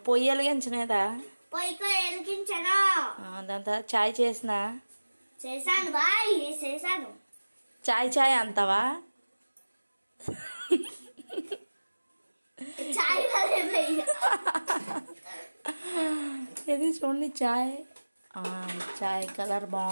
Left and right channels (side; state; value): both; inverted; correlation -1.00